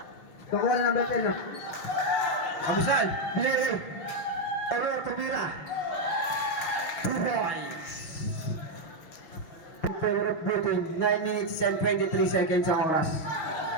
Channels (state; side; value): late; right; 6.3 ms